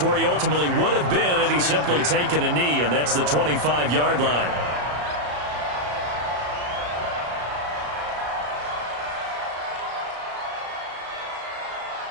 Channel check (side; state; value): left; late; 34 ms